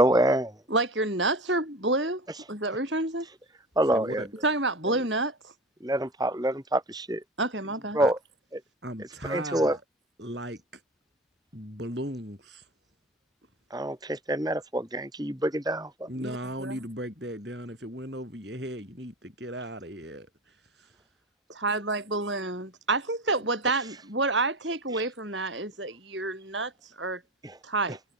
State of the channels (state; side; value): normal; both; correlation 0.32